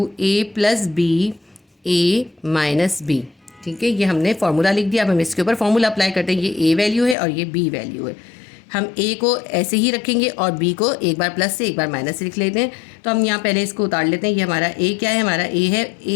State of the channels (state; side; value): drops out; right; at 7.2 s